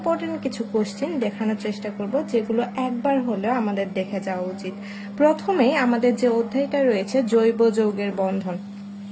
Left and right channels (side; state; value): both; identical; correlation 1.00